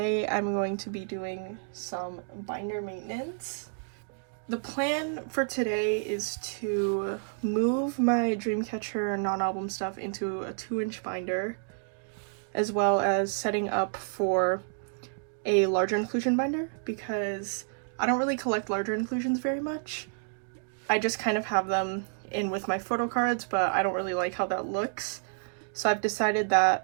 I'm going to be doing some binder maintenance. The plan for today is to move my Dreamcatcher non-album stuff into a 2-inch binder, as well as setting up for a larger inclusion binder because I don't really collect larger inclusions very much. I just kind of have them in with my photo cards, but I don't really like how that looks. So I've decided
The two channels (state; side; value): silent; left; digital silence